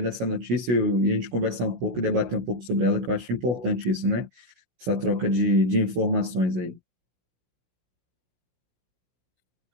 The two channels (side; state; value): left; late; 16 ms